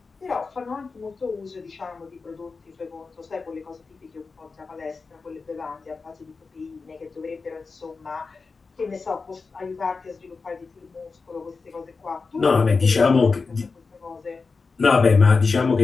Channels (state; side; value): quieter; right; 4.4 dB